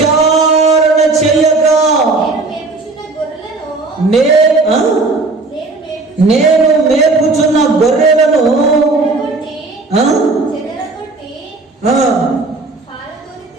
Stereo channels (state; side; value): quieter; left; 3.5 dB